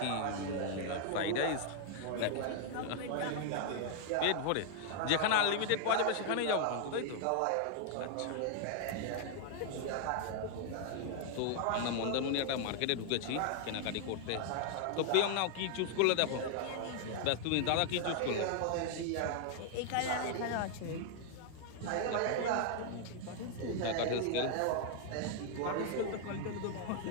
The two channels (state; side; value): different; both; correlation 0.00